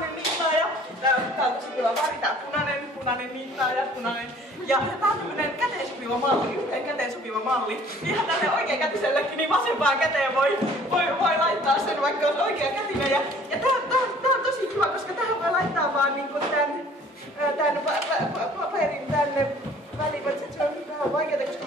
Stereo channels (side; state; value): both; normal; correlation 0.53